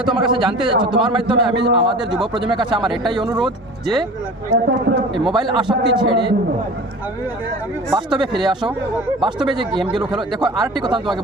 আমার কাছে জানতে চাচ্ছ, তোমার মাধ্যমে আমি আমাদের যুব প্রজন্মের কাছে আমার এটাই অনুরোধ যে এই মোবাইল আসক্তি ছেড়ে বাস্তবে ফিরে আসো, বাস্তবে যে গেমগুলো খেলো। দেখো আরেকটি কথা তোমাকে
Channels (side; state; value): both; normal; correlation 0.39